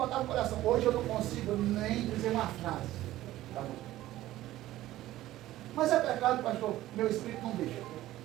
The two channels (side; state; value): left; quieter; 15.2 dB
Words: o coração. Hoje eu não consigo nem dizer uma frase. Tá bom. Mas é pecado, pastor. Meu espírito não deixa.